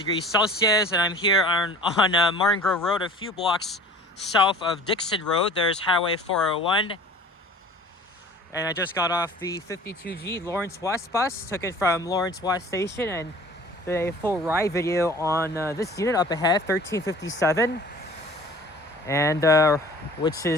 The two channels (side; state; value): both; normal; correlation 0.45